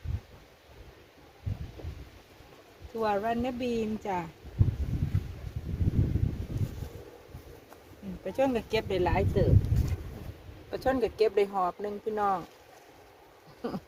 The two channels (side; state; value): both; identical; correlation 1.00